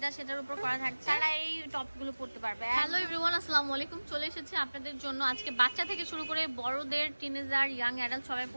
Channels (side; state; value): both; inverted; correlation -1.00